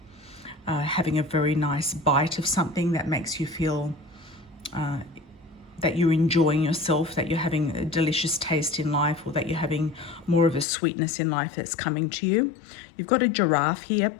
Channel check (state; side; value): drops out; right; at 10.7 s